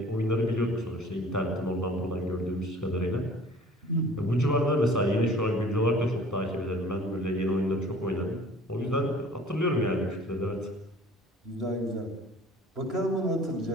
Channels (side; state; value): both; normal; correlation 0.49